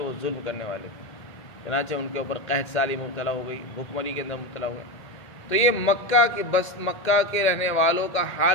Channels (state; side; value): late; right; 2.1 ms